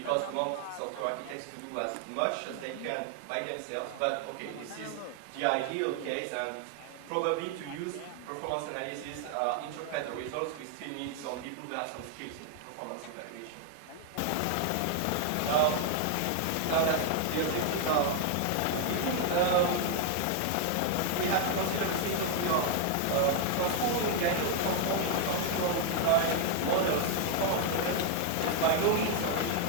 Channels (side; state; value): both; different; correlation 0.00